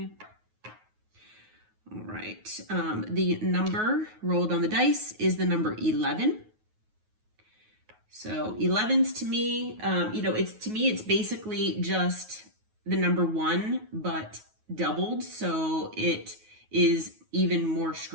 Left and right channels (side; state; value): left; late; 9.4 ms